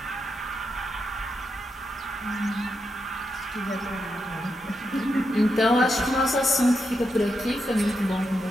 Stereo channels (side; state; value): both; normal; correlation 0.84